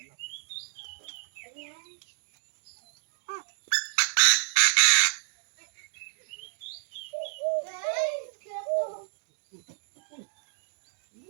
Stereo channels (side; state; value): left; silent; digital silence